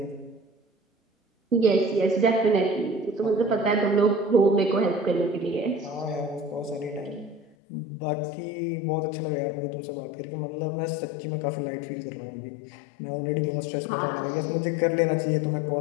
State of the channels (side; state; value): right; drops out; at 7.6 s